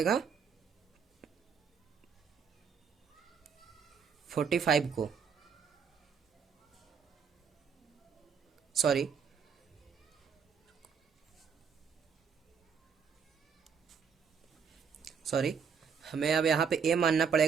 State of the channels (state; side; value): quieter; left; 6.5 dB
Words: 45 को, सॉरी हमें अब यहाँ पे ए मानना